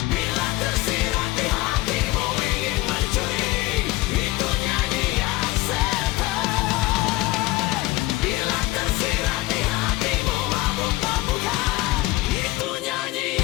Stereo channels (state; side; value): quieter; right; 19.6 dB